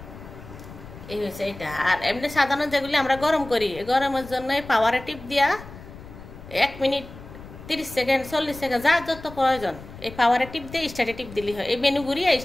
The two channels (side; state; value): left; noise; rumble, 16 dB below the sound